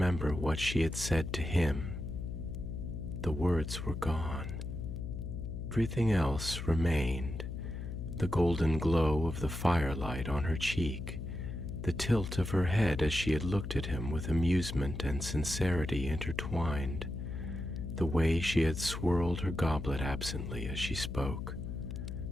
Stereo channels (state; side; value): noise; left; hum, 6 dB below the sound